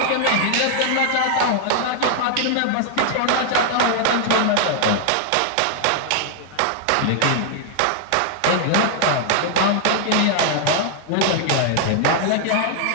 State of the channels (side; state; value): both; different; correlation 0.00